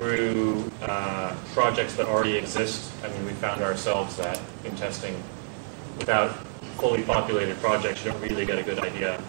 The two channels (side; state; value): left; silent; digital silence